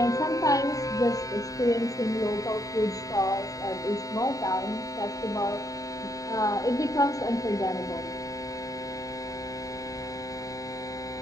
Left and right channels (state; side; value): late; right; 0.16 ms